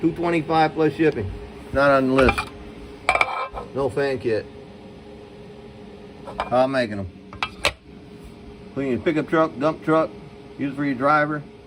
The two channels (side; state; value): both; identical; correlation 1.00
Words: $225 plus shipping. Not on the list. No fan kit. How I'm making them. Put it in your pickup truck, dump truck. Use it for your driver.